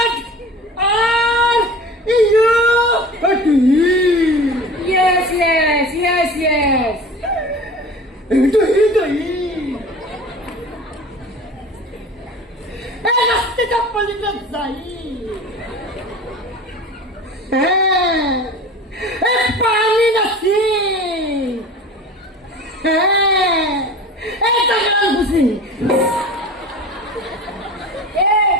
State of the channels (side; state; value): both; normal; correlation 0.38